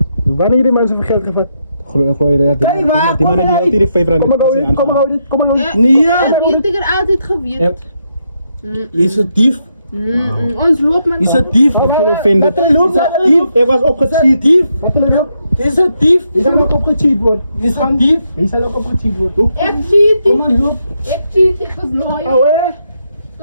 Wanneer die mensen van geld gevat? Gooi je Kijk waar, die kom man die maar altyd die 5 rand. Kom maar gauw dit. Ja, Nee, ja. Heeft ik er altijd gewierd. Je is een dief. Ons loopt man. Je is een dief. Ek voel offended. Wat loopt dat dief? Ek was opgecheat. Dief. Wat wil je nou? Je is een dief. Die zal ook opgecheat worden. Je is een dief. Die zal ook opgecheat worden. Ik cheat. Kom maar, loop. Ik cheat. Ik was loyal. Oh hè? Ik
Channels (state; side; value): inverted; both; correlation -0.79